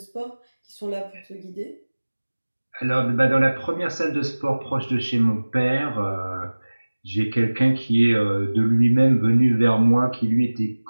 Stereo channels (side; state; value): both; inverted; correlation -1.00